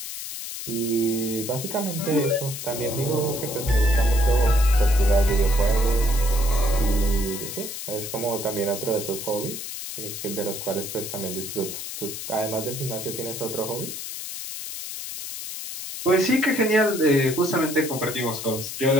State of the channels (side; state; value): left; noise; hiss, 8 dB below the sound